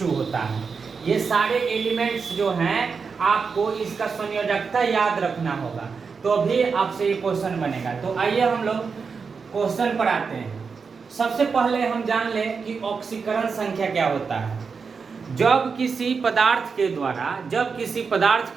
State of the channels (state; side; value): quieter; left; 5.3 dB